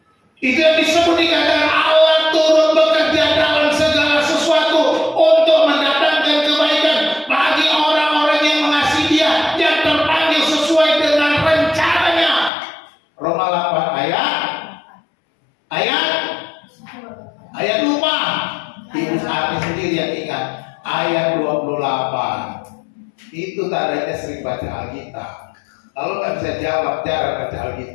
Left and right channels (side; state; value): right; drops out; at 12.5 s